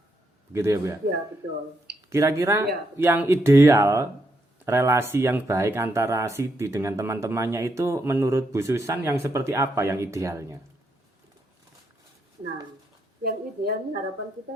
begitu ya Bu ya? Iya betul. Kira-kira yang ideal, relasi yang baik antara Siti dengan teman-temannya itu menurut Bu Susan yang seperti apa yang idealnya? Nah, yang idealnya harapan kita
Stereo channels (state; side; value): normal; both; correlation 0.78